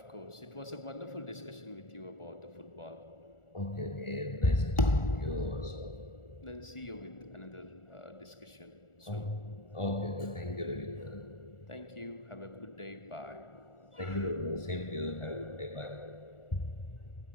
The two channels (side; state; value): right; late; 1.4 ms